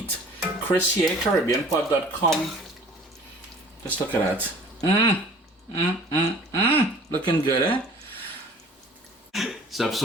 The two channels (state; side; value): normal; both; correlation 0.48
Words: Chris here, CaribbeanPod.com. Just look at that. Looking good, eh? Sup,